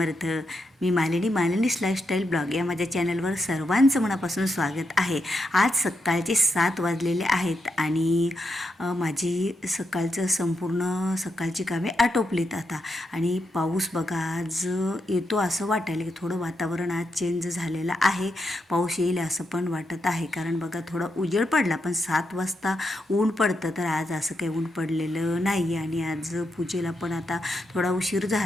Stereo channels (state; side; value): normal; both; correlation 0.83